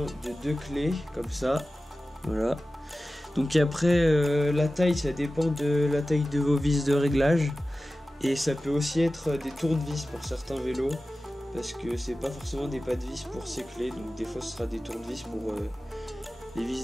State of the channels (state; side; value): normal; both; correlation 0.95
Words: de deux clés comme ça. Voilà. Donc après la taille, ça dépend de la taille de vos vis de réglage. Et ça peut aussi être des tournevis pour certains vélos. Parce que c'est pas forcément des pas de vis pour ces clés. Donc des fois ce sera des tournevis pour les